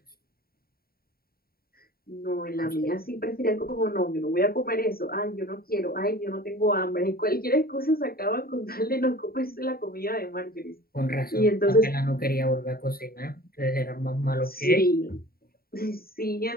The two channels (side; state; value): right; late; 0.43 ms